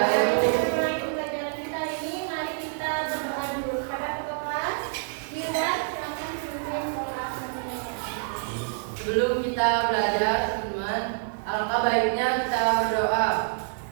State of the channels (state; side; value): silent; left; digital silence